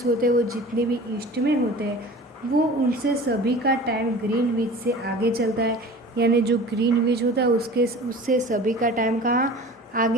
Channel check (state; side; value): normal; both; correlation 0.40